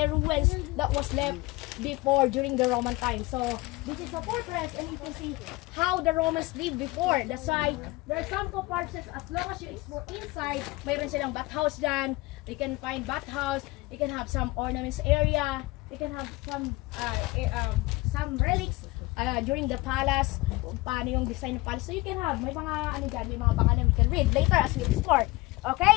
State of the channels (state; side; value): quieter; right; 21.7 dB